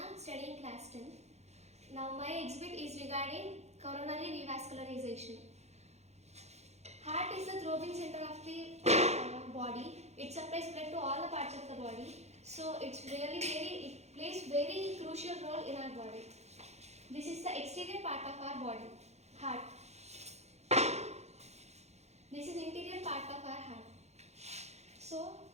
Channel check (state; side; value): late; left; 0.32 ms